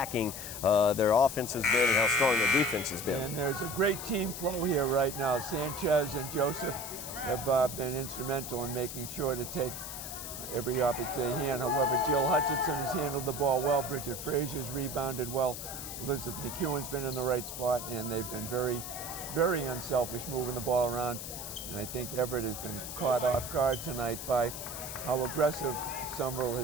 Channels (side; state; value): left; noise; hiss, 8 dB below the sound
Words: their offense has been and how strong their defense has been. And there's a great team flow here right now. Sanchez and Joseph have been instrumental in making sure to take every opportunity hand. However, Jill Hutchinson has handled the ball well. Bridget Frazier's rebounded well. Elizabeth McEwen's been in the right spot, and they've been very, very unselfish moving the ball around. And I think Everett has been caught off guard tonight by how aggressive Somerville